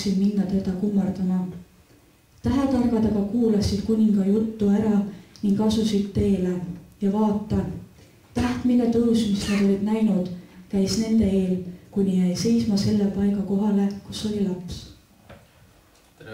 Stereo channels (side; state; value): both; identical; correlation 1.00